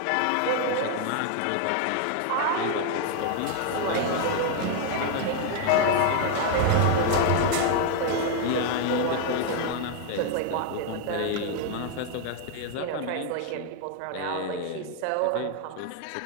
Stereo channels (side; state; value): both; different; correlation 0.00